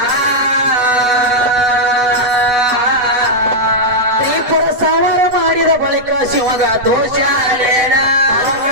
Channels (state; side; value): late; left; 8.1 ms